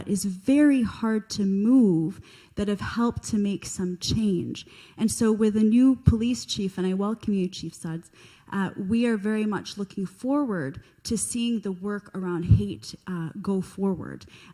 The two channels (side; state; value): both; identical; correlation 1.00